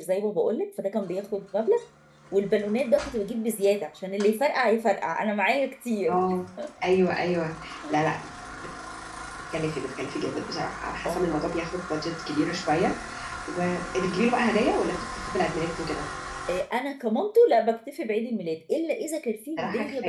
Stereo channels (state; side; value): identical; both; correlation 1.00